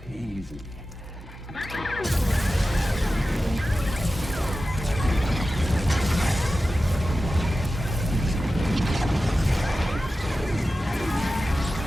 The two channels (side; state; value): both; normal; correlation 0.94